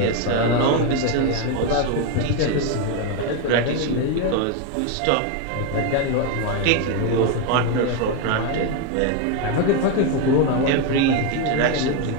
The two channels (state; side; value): different; both; correlation 0.02